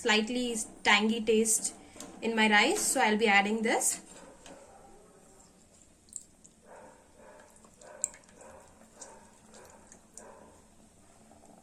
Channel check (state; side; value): identical; both; correlation 1.00